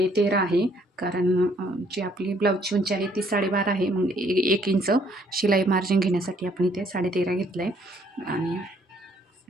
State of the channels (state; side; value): normal; both; correlation 0.65